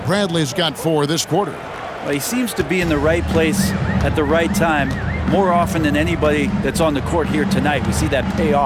Bradley's got 4 this quarter. Well, he seems to be in the right place at the right time more often than anybody that's on the court here tonight. We see that pay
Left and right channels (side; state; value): both; identical; correlation 1.00